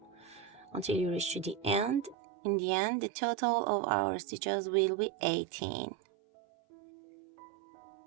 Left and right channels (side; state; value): left; drops out; at 2.1 s